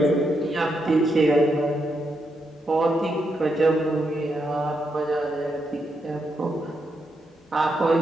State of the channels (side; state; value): both; normal; correlation 0.81